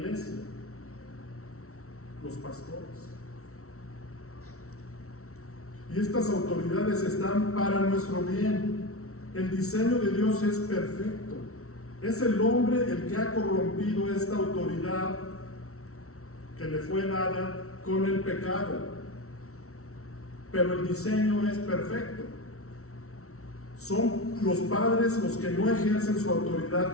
los pastores. Y estas autoridades están para nuestro bien. El diseño de Dios es perfecto. Es el hombre el que ha corrompido esta autoridad que le fue dada con el pecado. Pero el diseño es perfecto. Son los padres los que no ejercen su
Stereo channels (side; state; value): right; late; 0.63 ms